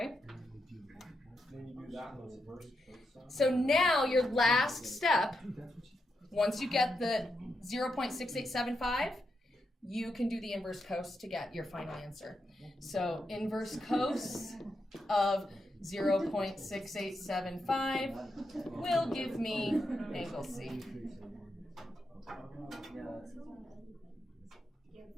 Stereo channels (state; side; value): normal; both; correlation 0.84